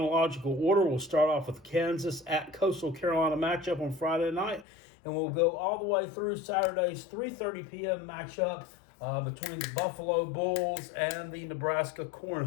order. We'll start off with Kansas at Coastal Carolina matchup on Friday night, and we'll go all the way through Saturday's 3:30 p.m. matchup between the Buffalo Bulls and the Nebraska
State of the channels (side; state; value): right; drops out; at 4.7 s